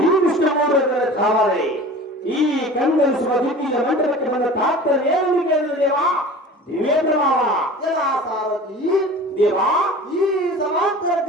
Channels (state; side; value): normal; both; correlation 0.39